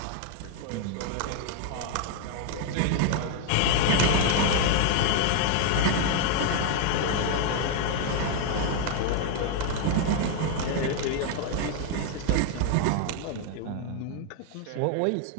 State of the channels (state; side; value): different; both; correlation 0.00